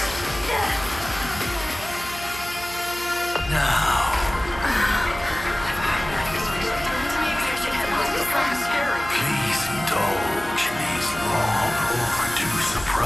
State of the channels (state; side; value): noise; right; hum, 14 dB below the sound